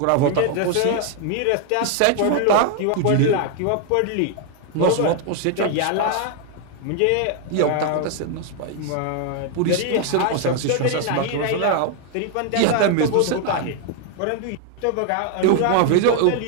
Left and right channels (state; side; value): different; both; correlation 0.00